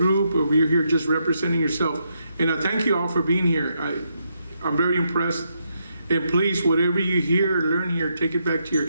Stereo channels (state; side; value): inverted; both; correlation -0.79